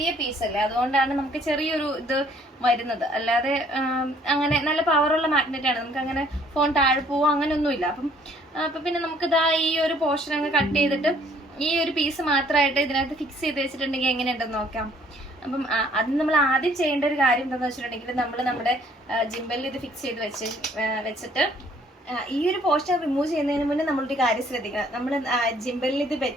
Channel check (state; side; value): normal; both; correlation 0.61